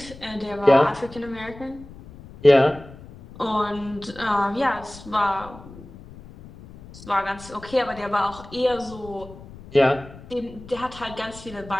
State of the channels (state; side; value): noise; left; rumble, 18 dB below the sound